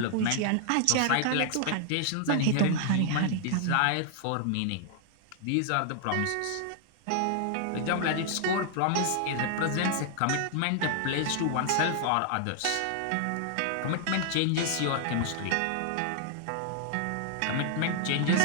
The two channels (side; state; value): both; different; correlation -0.01